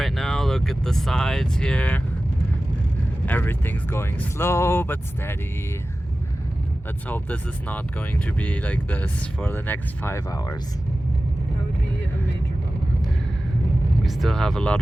now. Look at the sides here. Everything's going slow but steady. Let's hope this is not going to be like this for the next 5 hours. That would be a major bummer. We still have a lot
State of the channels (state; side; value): normal; both; correlation 0.95